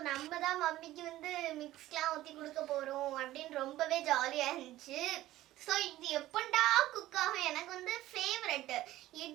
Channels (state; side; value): quieter; left; 15.4 dB